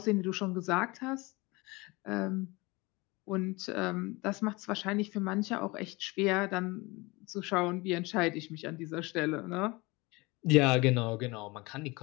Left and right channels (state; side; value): quieter; right; 24.3 dB